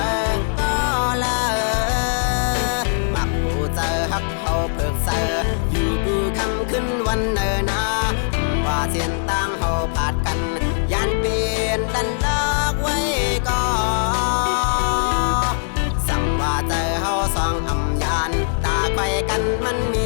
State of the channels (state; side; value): silent; right; 59 dB below the other